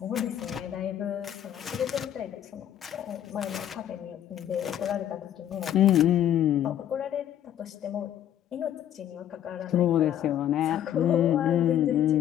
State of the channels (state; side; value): quieter; right; 10.8 dB